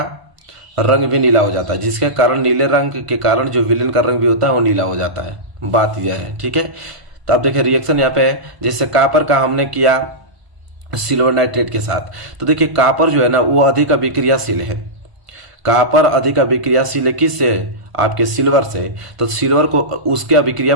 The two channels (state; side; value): late; left; 1.5 ms